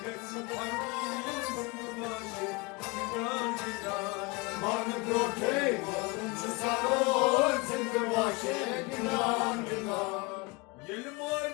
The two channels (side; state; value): right; quieter; 26.3 dB